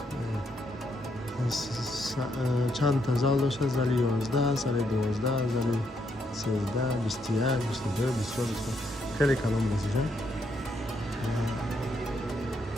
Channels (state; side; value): normal; both; correlation 0.76